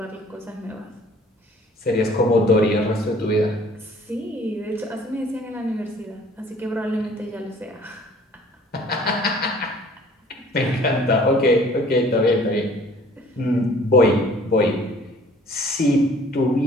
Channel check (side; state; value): both; normal; correlation 0.53